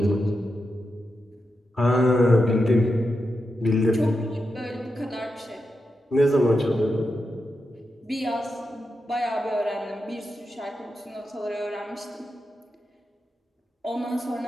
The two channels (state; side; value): normal; both; correlation 0.88